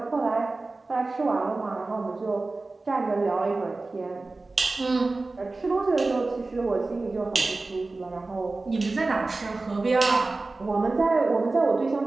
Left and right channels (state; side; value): quieter; left; 3.4 dB